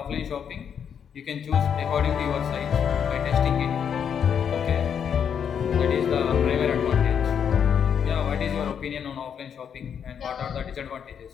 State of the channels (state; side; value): quieter; right; 7.8 dB